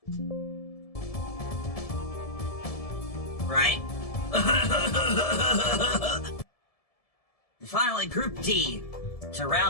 Right? And finally, Group D, to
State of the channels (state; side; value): late; right; 1.7 ms